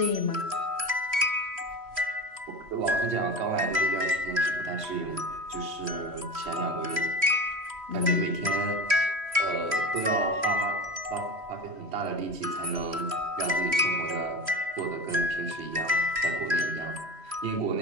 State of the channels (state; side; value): late; left; 3.1 ms